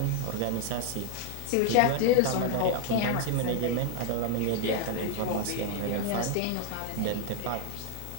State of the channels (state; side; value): different; both; correlation 0.01